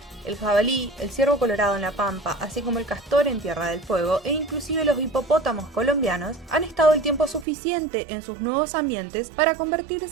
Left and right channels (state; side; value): drops out; left; at 7.5 s